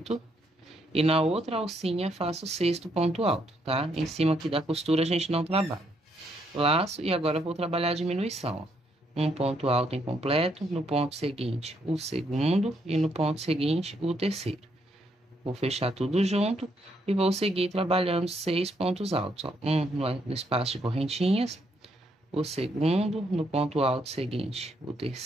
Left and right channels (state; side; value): normal; both; correlation 0.74